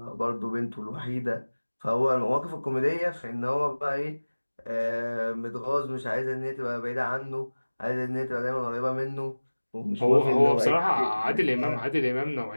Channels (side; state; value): both; inverted; correlation -1.00